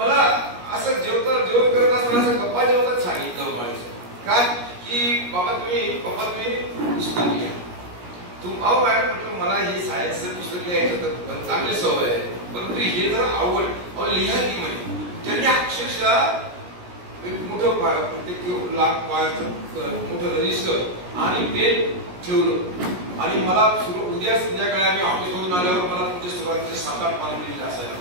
असं जेवण करत असताना असं गप्पा जेवतात सांगितलं म्हणायचं काय की पप्पा तुम्ही पुस्तक लिहा. अहो मॅडम म्हटलं मला हे सायन्सचं पुस्तक लिहायचं तर चांगली सवय आहे, परंतु हे जर आवड लिहा की म्हणे. त्यांनी अक्षरशः मोठं प्रत्येक लाख मोठं रजिस्टर आणि पेन ठेवलं, आणि मला उद्या संध्याकाळी आम्ही ऑफिसमधून आल्यावर मला तुमच्या सुरुवातीचे 7-8 पानं लिहिलेले असायला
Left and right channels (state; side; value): late; left; 17 ms